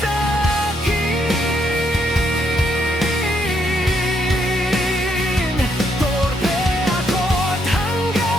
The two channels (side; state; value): both; normal; correlation 0.75